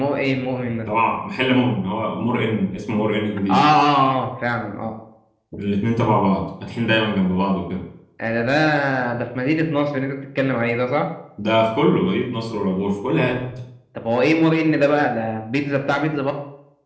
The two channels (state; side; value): identical; both; correlation 1.00